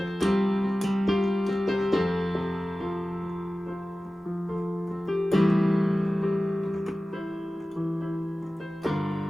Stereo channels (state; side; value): normal; both; correlation 0.96